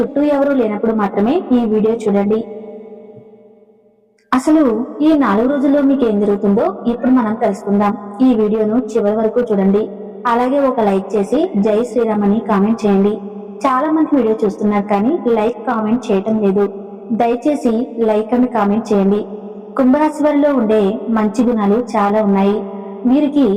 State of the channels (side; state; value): both; identical; correlation 1.00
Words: ఎవరూ లేనప్పుడు మాత్రమే ఈ వీడియో చూడండి. అసలు ఈ 4 రోజుల్లో మీకు ఏం జరుగుతుందో ఇప్పుడు మనం తెలుసుకుందాం. ఈ వీడియోను చివరి వరకు చూడండి. అలాగే ఒక లైక్ చేసి జై శ్రీరామ్ అని కామెంట్ చేయండి. చాలా మంది వీడియో చూస్తున్నారు కానీ లైక్ కామెంట్ చేయటం లేదు. దయచేసి లైక్ అని కామెంట్ చేయండి. కుంభరాశి వారిలో ఉండే మంచి గుణాలు చాలా ఉన్నాయి. వీరికి